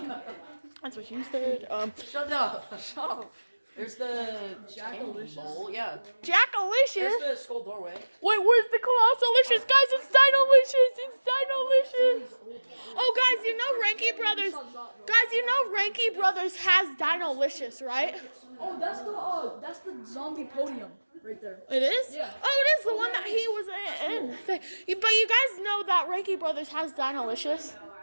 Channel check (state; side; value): inverted; both; correlation -1.00